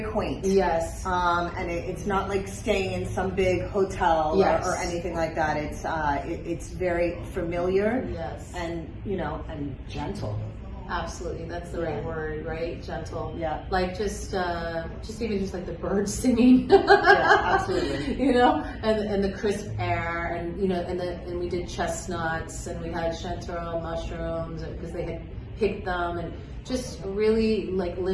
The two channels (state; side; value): identical; both; correlation 1.00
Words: quaint. Yes. And it's not like staying in some big hotel or anything like that. It's very familiar. Yes. And, you know, and gentle. Absolutely, that's the right word, right? Gentle. Yeah. Like just even just like the birds singing. Absolutely. You know, and the crisp air, and you know, and we did chestnuts, and we had chanterelle mushrooms because they had picked them, and just really like